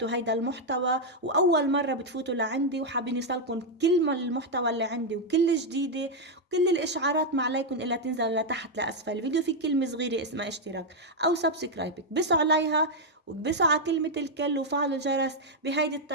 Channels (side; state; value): both; normal; correlation 0.00